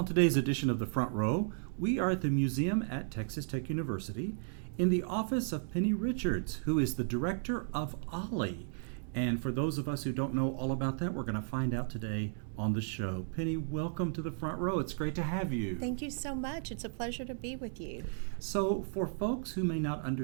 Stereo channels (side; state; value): left; silent; digital silence